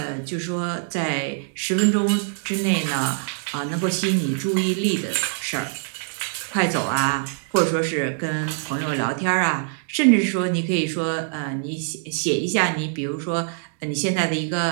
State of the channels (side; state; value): left; silent; digital silence